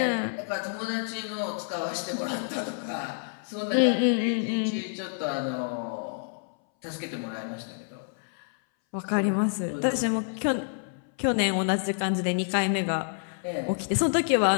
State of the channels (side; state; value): right; silent; 59 dB below the other